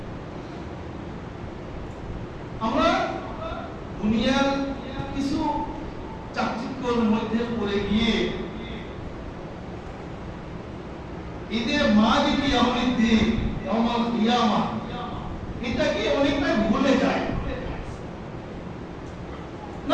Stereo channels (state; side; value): identical; both; correlation 1.00